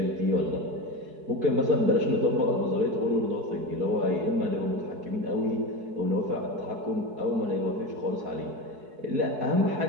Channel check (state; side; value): late; left; 4.7 ms